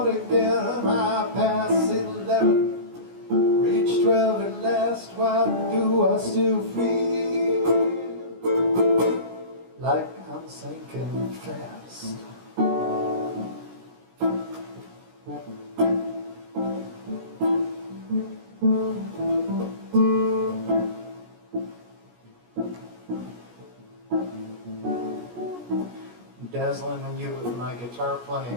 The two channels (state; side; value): late; left; 17 ms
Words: again. I pass 11, reach 12 at last. Why do I still feel like I'm sinking fast? Dazzling you with my guitar